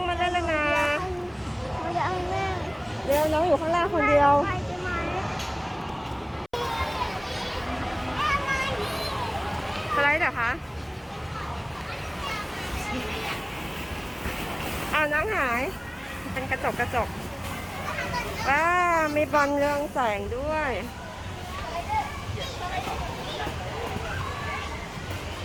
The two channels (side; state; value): both; identical; correlation 1.00